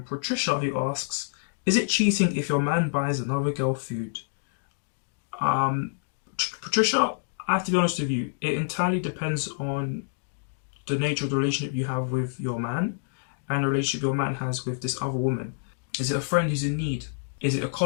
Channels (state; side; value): silent; right; digital silence